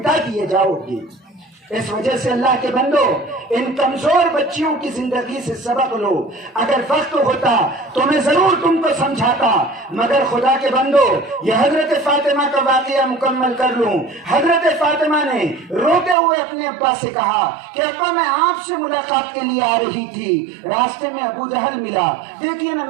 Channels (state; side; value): drops out; left; at 16.2 s